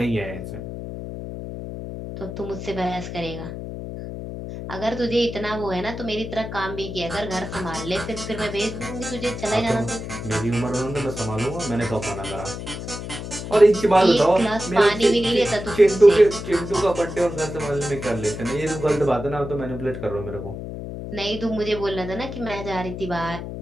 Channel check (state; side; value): noise; left; hum, 8 dB below the sound